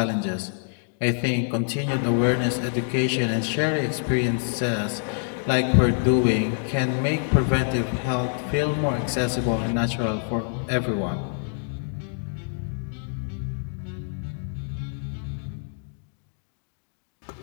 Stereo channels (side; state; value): right; silent; 58 dB below the other